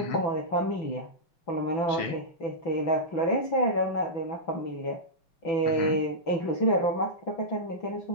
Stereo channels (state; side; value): late; right; 6.0 ms